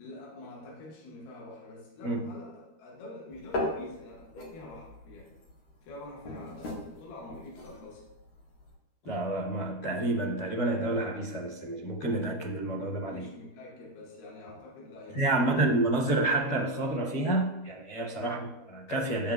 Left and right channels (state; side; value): late; right; 13 ms